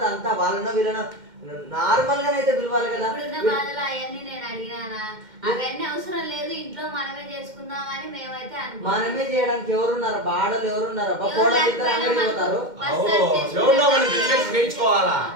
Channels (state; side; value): late; left; 2.1 ms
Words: అంతా వాళ్ళనో వీళ్ళనో నార్మల్ గానైతే పిలవాలి కదా. అవన్నీ నేను అడిగినా అవన్నీ అవసరం లేదు, ఇంట్లో మనమే చేసుకుందామని మేమైతే మనమే చేయడానికి ఎవరున్నారు? బాడలు ఎవరున్నారు? పోతారు.